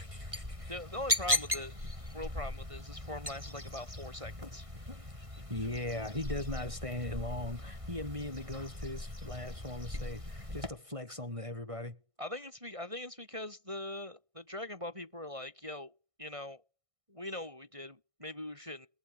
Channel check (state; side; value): late; left; 1.6 ms